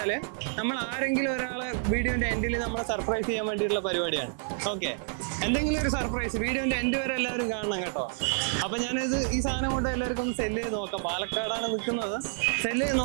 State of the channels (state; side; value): silent; left; 59 dB below the other